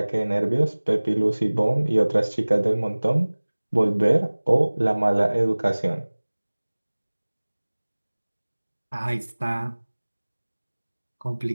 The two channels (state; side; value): inverted; both; correlation -1.00